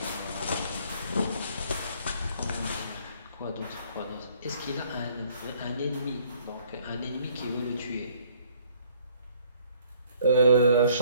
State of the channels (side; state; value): both; inverted; correlation -0.61